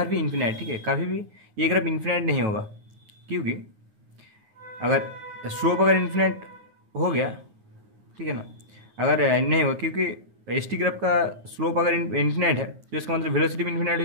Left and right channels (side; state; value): left; late; 9.5 ms